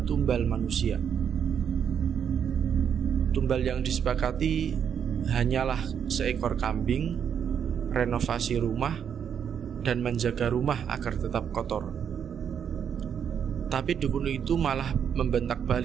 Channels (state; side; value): quieter; left; 8.0 dB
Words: tumbal manusia. Tumbal yang disepakati hanyalah seekor kambing, renovasi rumah, dan menjaga rumah agar tetap kotor. Tapi dukun itu malah membentak